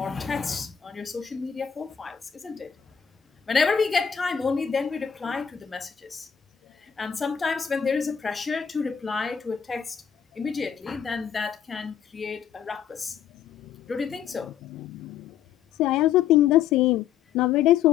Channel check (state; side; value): quieter; right; 8.2 dB